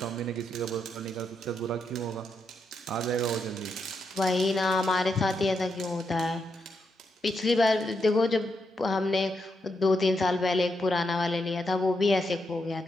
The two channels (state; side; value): normal; both; correlation 0.82